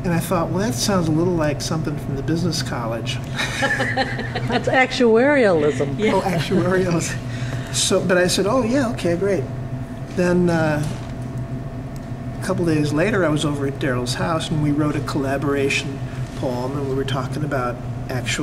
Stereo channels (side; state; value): both; identical; correlation 1.00